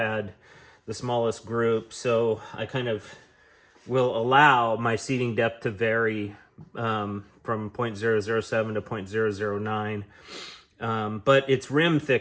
the smallest group. So I kind of will allow my seating depth to vary from 0.007 to 0.009. But it's rim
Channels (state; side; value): identical; both; correlation 1.00